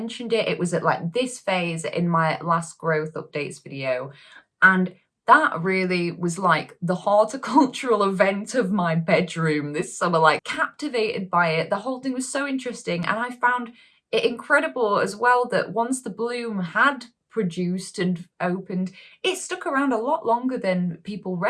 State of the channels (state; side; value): identical; both; correlation 1.00